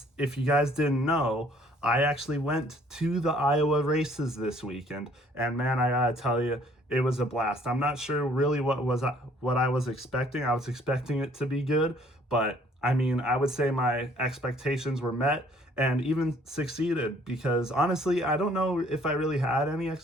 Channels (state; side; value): normal; both; correlation 0.59